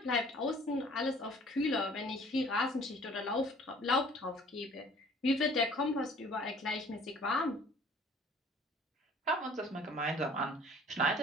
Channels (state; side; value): normal; both; correlation 0.52